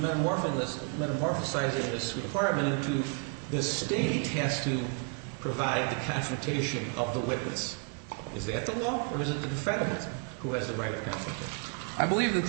this requirement into the state has to provide the confrontation of the witness. Is that the law, or is it the defendant who has the right of confrontation? I believe that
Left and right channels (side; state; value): left; quieter; 35.9 dB